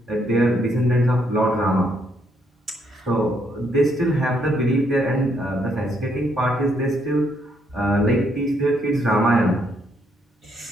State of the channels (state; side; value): normal; both; correlation 0.73